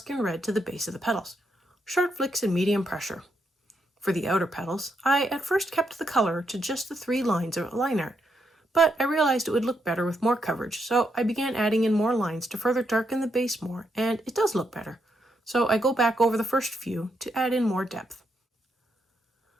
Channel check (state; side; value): normal; both; correlation 0.79